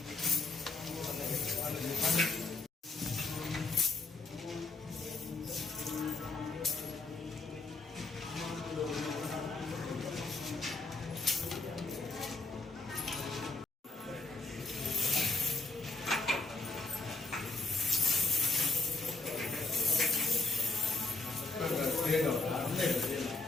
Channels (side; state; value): right; quieter; 3.5 dB